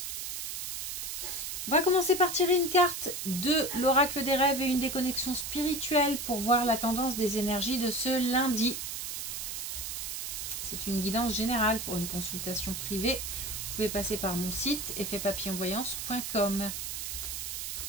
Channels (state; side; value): noise; right; hiss, 5 dB below the sound